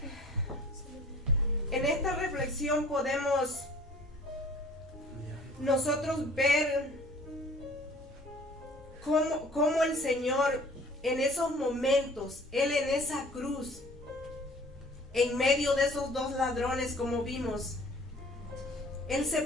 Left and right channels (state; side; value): normal; both; correlation 0.51